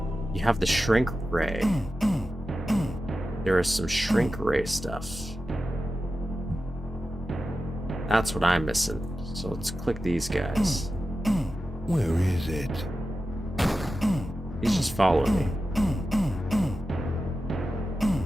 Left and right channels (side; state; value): both; normal; correlation 0.92